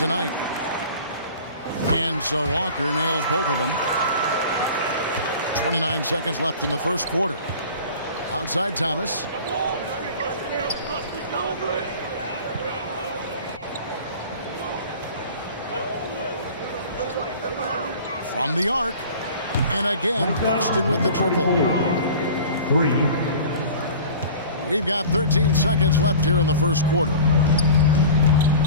And so Walker nails both of them. 29 seconds left in the first quarter. Outside Thomas. From the arc. And again, Boston with the triple. 3. We've got 13 seconds left here in the first quarter.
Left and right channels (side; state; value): both; inverted; correlation -0.40